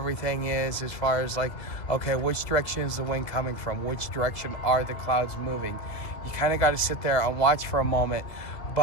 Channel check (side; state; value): right; late; 2.0 ms